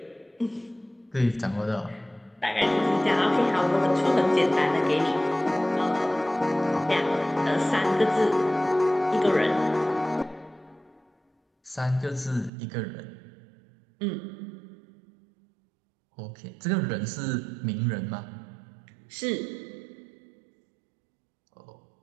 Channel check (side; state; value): left; drops out; at 12.5 s